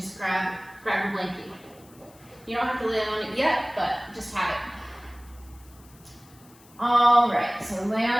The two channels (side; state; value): left; noise; hiss, 26 dB below the sound